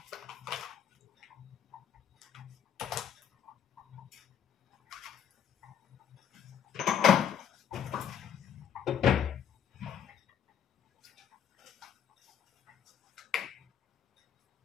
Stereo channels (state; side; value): quieter; right; 8.7 dB